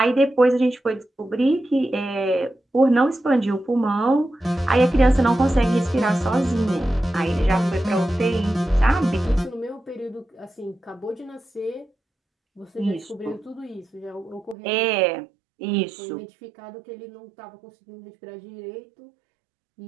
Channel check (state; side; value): drops out; left; at 14.6 s